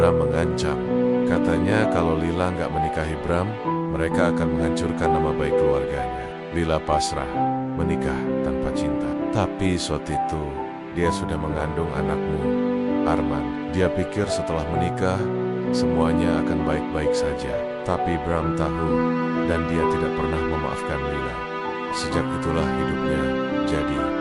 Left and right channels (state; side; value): identical; both; correlation 1.00